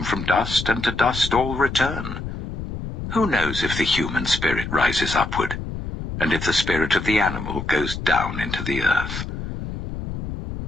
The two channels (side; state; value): left; noise; rumble, 7 dB below the sound